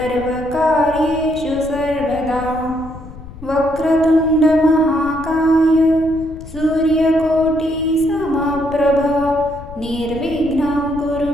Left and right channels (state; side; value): noise; left; rumble, 15 dB below the sound